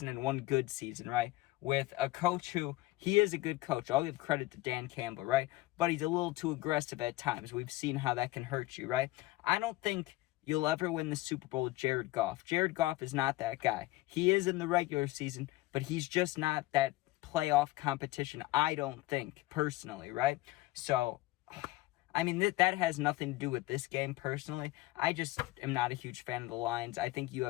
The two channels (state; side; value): quieter; right; 18.5 dB